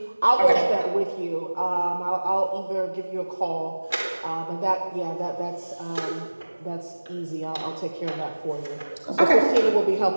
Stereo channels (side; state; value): both; inverted; correlation -1.00